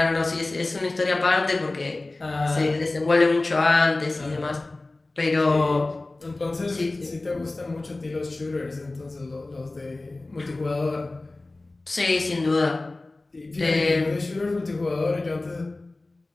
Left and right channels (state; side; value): quieter; right; 3.0 dB